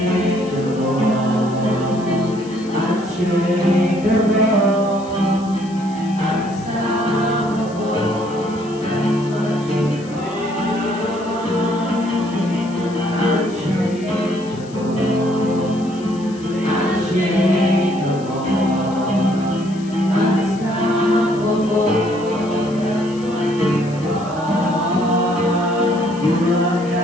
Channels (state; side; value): noise; left; hiss, 22 dB below the sound